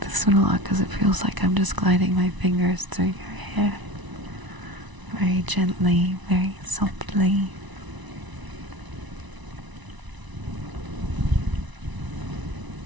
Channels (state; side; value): late; left; 1.0 ms